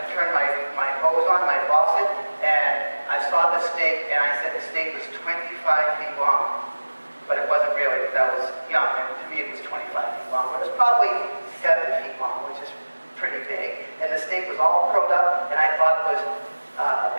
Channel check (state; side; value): inverted; both; correlation -1.00